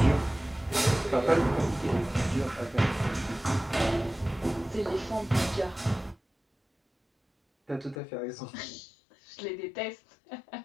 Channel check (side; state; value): right; drops out; at 8.0 s